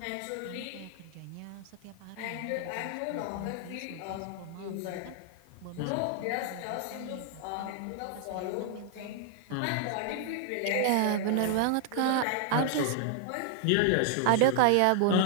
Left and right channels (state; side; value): different; both; correlation 0.00